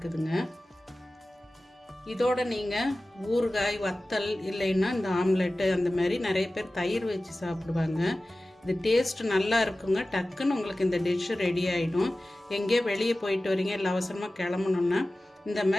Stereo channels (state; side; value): normal; both; correlation 0.96